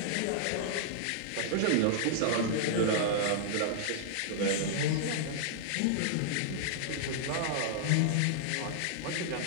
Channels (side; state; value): both; different; correlation -0.01